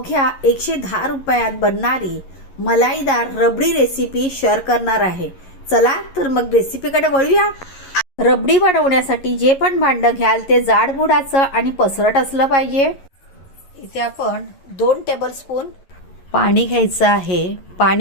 110 रुपयात बनणारी मलाईदार रबडी रेसिपी शेअर करणार आहे। चला तर मग रेसिपीकडे वळूया। रबडी बनवण्यासाठी जे पण भांडं घ्याल ते जाडबुडाचं आणि पसरट असलं पाहिजे। इथे आपण 2 टेबलस्पून पाणी घ्यायचं आहे।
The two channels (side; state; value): right; late; 11 ms